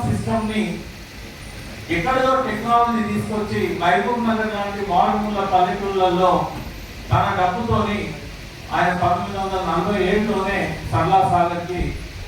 సిస్టమ్ ని ఎక్కడో టెక్నాలజీ తీసుకొచ్చి మహబూబ్ నగర్ లాంటి మారుమూల పల్లెటూళ్ళల్లో తన డబ్బుతోని ఆయన 1947లోనే సరళా సాగర్ కి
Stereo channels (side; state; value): both; identical; correlation 1.00